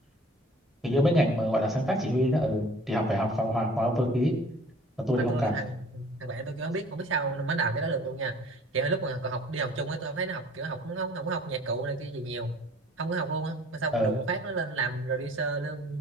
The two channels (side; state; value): both; normal; correlation 0.50